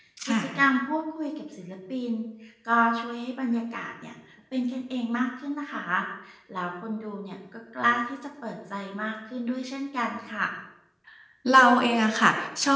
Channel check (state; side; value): identical; both; correlation 1.00